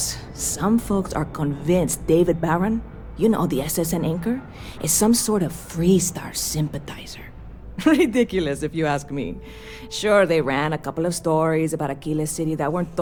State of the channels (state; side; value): identical; both; correlation 1.00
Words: some folks are convinced David Barron, you know, the SSN anchor, is some sort of Freestar sympathizer. Ridiculous, if you ask me. Sure, they ran a couple of stories about Aquila City that weren't